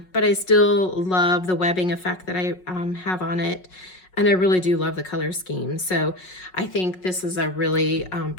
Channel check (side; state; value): right; late; 5.5 ms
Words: but I still love the webbing effect that I have on it. And I really do love the color scheme. So I think this is a really